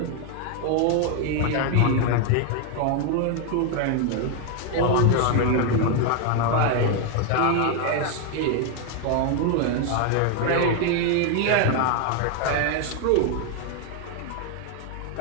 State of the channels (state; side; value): different; both; correlation 0.01